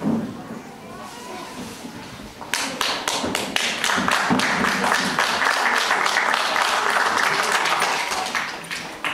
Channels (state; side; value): identical; both; correlation 1.00